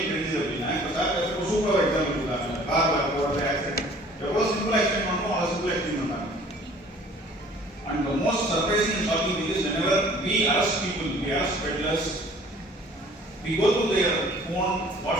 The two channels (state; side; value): normal; both; correlation 0.52